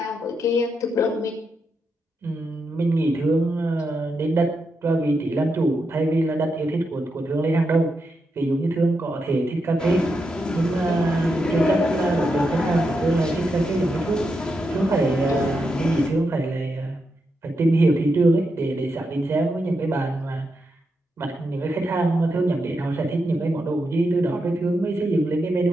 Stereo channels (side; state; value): both; normal; correlation 0.85